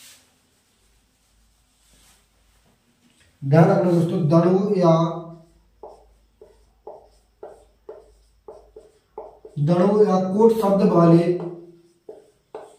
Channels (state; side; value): identical; both; correlation 1.00